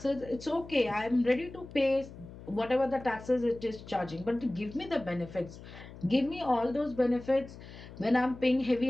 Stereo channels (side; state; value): left; noise; hum, 16 dB below the sound